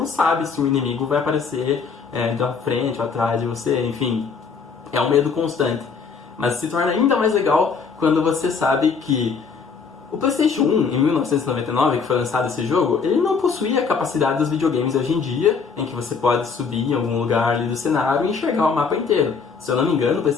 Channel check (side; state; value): right; quieter; 5.4 dB